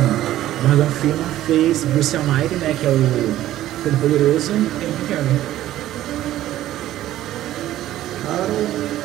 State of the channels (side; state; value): left; quieter; 13.8 dB